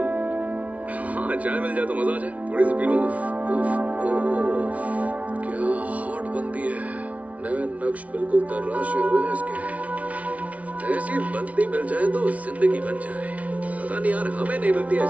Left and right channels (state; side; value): late; left; 0.067 ms